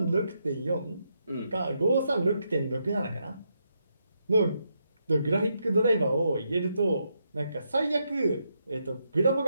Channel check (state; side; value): inverted; both; correlation -0.80